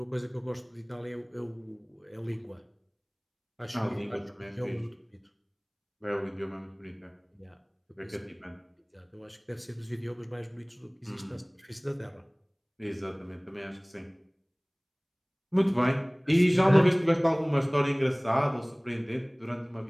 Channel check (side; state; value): both; identical; correlation 1.00